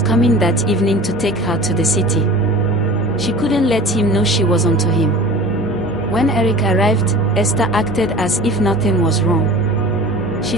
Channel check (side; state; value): both; normal; correlation 0.40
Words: that evening to take her to the city. She couldn't let him know she was onto him. When Eric arrived, Esther acted as if nothing was wrong. She